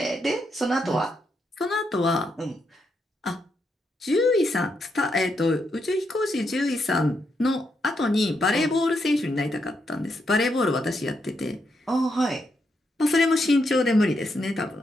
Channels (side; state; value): both; normal; correlation 0.80